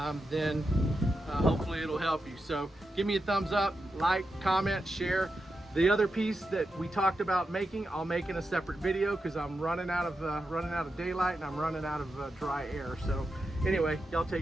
then hopefully it'll help you. So give me a thumbs up, like, comment, share. The other piece that we talked about making, I'll make in a separate video, because I'm running out of daylight and I'm running out of dry air. So anyway, y'all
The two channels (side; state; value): both; normal; correlation 0.88